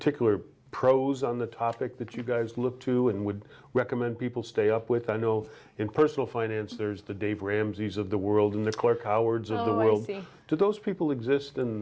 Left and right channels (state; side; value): identical; both; correlation 1.00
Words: pros on the topic that you guys look to and would recommend people stay up with? I know in personal finance there's the Dave Ramseys of the world and the Clark Howards of the world. I see. Do those people exist